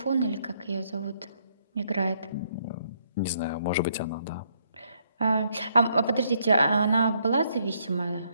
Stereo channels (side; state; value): both; inverted; correlation -0.72